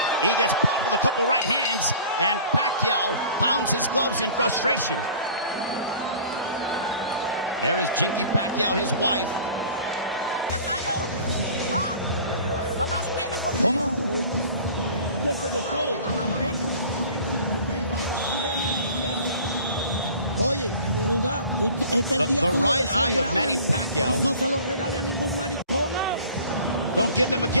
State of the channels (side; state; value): both; inverted; correlation -0.45